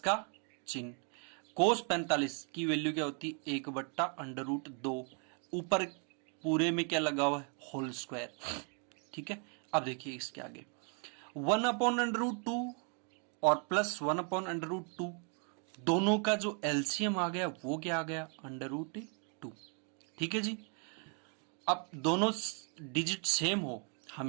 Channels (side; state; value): left; quieter; 39.8 dB